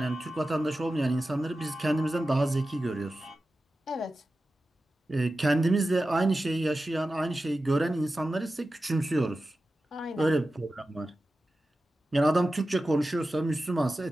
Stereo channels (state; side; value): normal; both; correlation 0.94